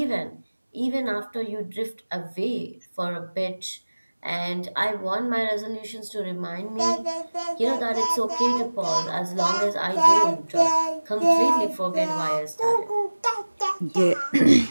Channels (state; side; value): inverted; both; correlation -1.00